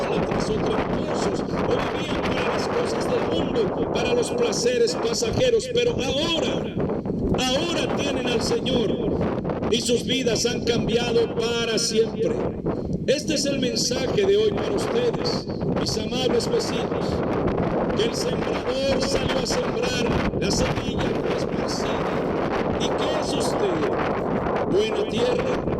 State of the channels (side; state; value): both; identical; correlation 1.00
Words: o tramposos o vivían para las cosas del mundo, para los placeres pasajeros, pero ahora tienen al Señor y sus vidas han cambiado para siempre. Este es el mensaje de hoy para ustedes, mis amables vecinos, que el sembrador salió a sembrar, la semilla fue esparcida. ¿Y qué es usted? ¿Buena tierra